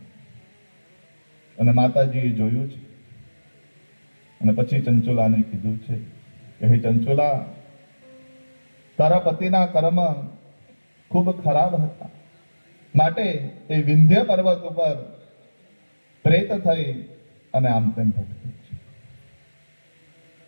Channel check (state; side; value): inverted; both; correlation -1.00